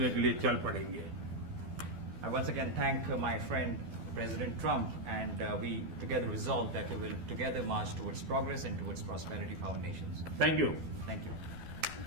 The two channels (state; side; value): late; left; 12 ms